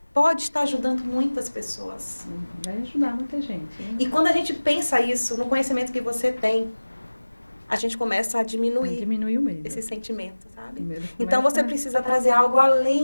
pode estar ajudando muitas pessoas. Vai ajudar muita gente. Hein? E quando a gente pensa isso, no conhecimento que você tem, a gente começa a diminuir o medo. Esse sentimento, sabe? Então, você precisa trazer algo além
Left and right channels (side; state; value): both; inverted; correlation -1.00